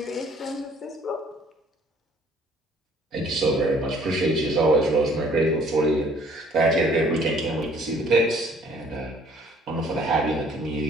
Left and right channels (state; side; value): normal; both; correlation 0.58